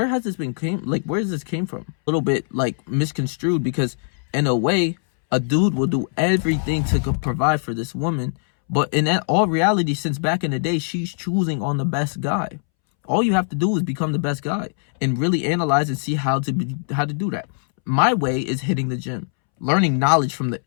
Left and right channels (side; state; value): right; silent; 65 dB below the other